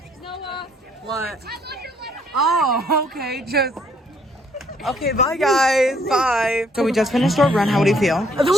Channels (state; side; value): normal; both; correlation 0.66